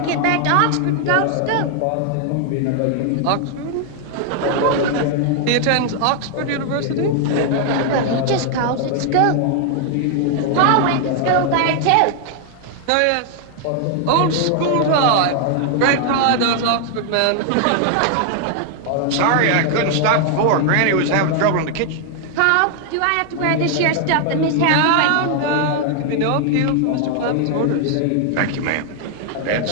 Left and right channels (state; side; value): different; both; correlation 0.00